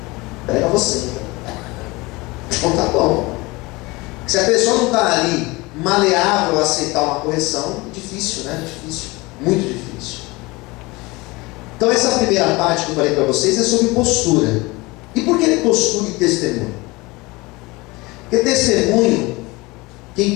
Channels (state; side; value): quieter; right; 23.3 dB